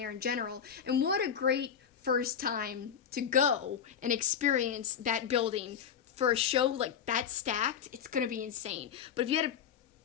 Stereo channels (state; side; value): quieter; right; 8.0 dB